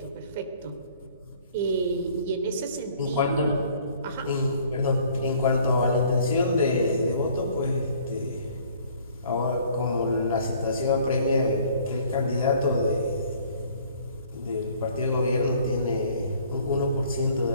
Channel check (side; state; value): both; inverted; correlation -0.56